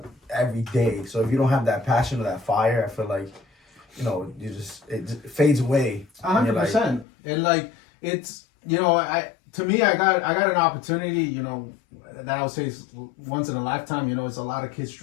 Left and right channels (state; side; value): drops out; right; at 7.1 s